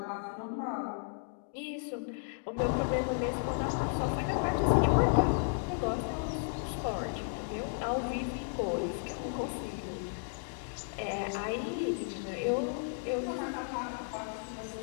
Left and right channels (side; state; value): right; silent; digital silence